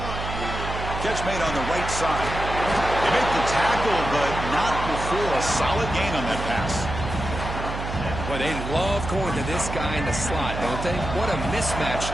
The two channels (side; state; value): right; noise; hum, 6 dB below the sound